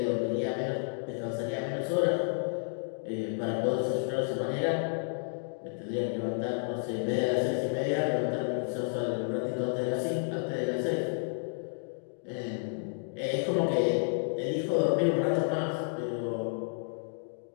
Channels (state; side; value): silent; right; digital silence